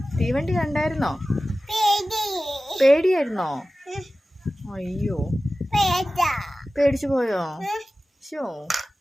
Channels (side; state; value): both; normal; correlation 0.96